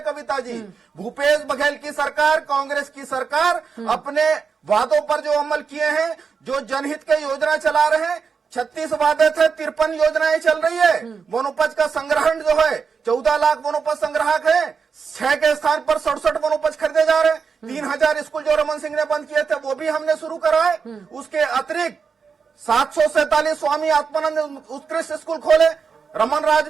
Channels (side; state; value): left; quieter; 5.7 dB